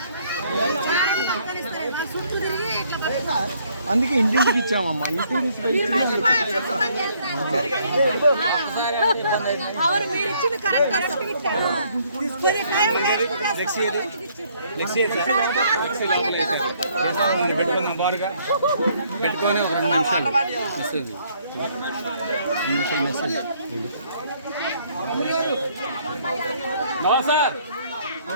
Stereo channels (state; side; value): inverted; both; correlation -0.65